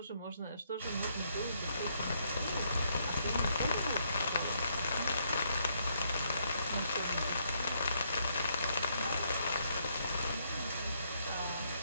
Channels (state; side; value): inverted; both; correlation -0.73